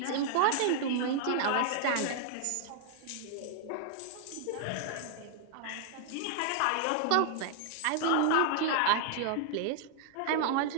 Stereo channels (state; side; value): different; both; correlation 0.00